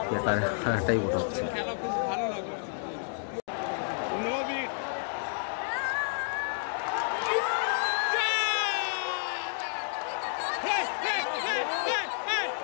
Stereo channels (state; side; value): silent; right; digital silence